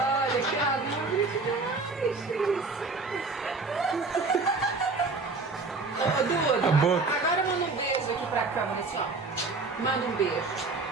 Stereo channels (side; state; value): left; quieter; 3.8 dB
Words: que amor demais. Ô, Duda, A boca. agora manda um beijo aqui pra câmera, assim, ó. Manda um beijo.